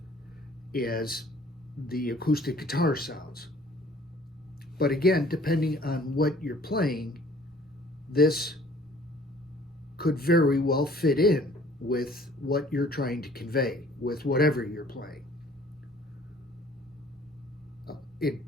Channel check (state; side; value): normal; both; correlation 0.55